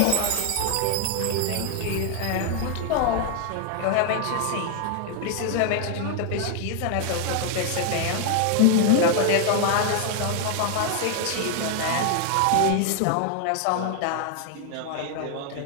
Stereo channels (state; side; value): different; both; correlation 0.00